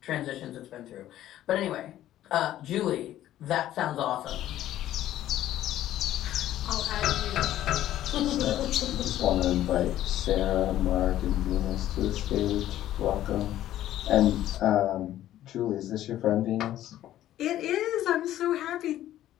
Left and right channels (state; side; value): quieter; right; 13.0 dB